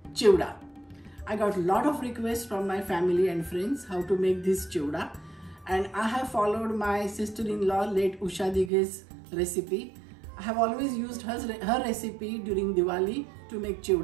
chivda. I got a lot of requests from my family and friends how to make this chivda, and I have followed my sister-in-law late Usha Dighe's recipe. I have always used her recipe during Diwali to make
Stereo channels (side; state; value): left; drops out; at 8.7 s